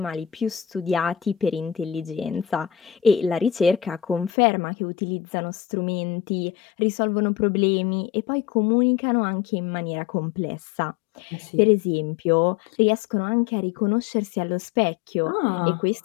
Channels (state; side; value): drops out; right; at 4.3 s